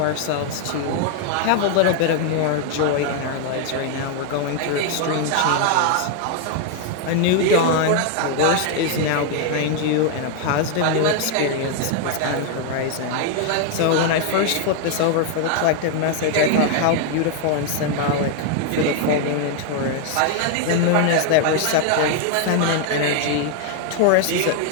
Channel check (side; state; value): both; different; correlation 0.00